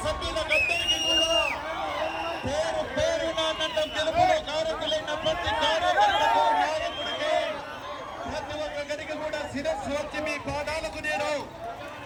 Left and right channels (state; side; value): identical; both; correlation 1.00